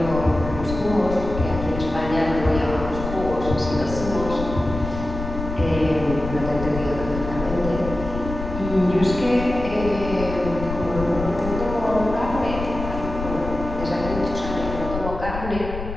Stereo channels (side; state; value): left; noise; rumble, 7 dB below the sound